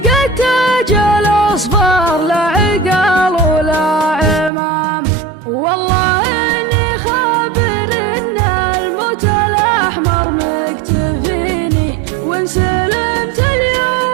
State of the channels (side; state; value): left; drops out; at 4.5 s